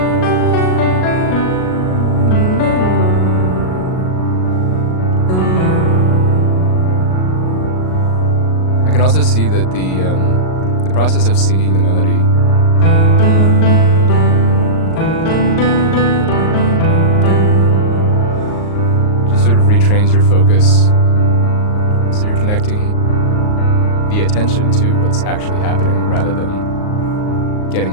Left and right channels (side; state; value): right; late; 38 ms